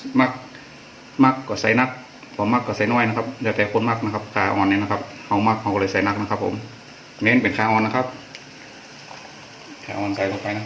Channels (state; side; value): identical; both; correlation 1.00